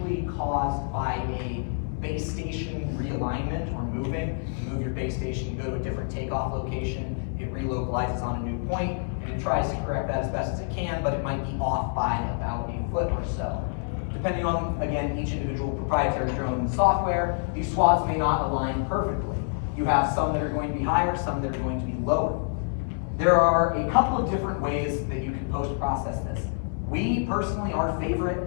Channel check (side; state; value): right; silent; digital silence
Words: caused by a base station realignment or moving. You move your base station, you go to a different takeoff location, it relocalizes on a new point, and it tries to correct that as best as it can, but it might be off by about a foot or so. Depending on, again, each individual proprietary drone software, these swaths may not align perfectly. You have some that are going to be higher, some that are going to be lower. There are a couple of different ways that you can post-process this. We personally, our